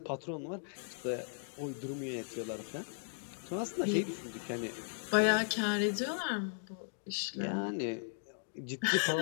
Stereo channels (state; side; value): silent; right; digital silence